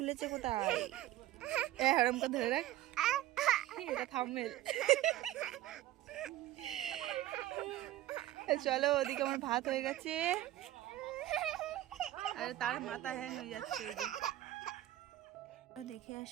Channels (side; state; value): left; quieter; 14.5 dB